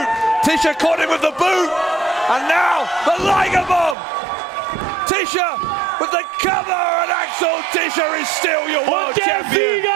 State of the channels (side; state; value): left; drops out; at 4.0 s